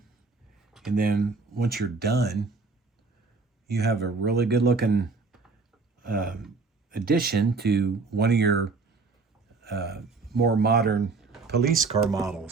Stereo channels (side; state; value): left; quieter; 4.2 dB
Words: and then once you're done, you have a really good looking addition to one of your more modern police car